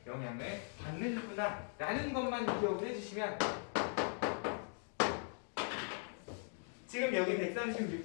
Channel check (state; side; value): silent; right; 51 dB below the other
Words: 영향을 받는구나 라는 것만 기억을 해주시면, 지금 여기